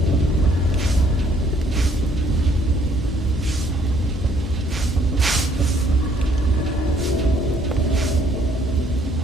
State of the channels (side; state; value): both; normal; correlation 0.64